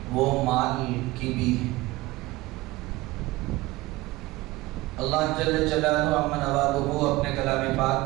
وہ مال کی بھی ہے. اللہ جل جلالہ عم نوالہ اپنے کلام پاک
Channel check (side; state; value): left; quieter; 19.7 dB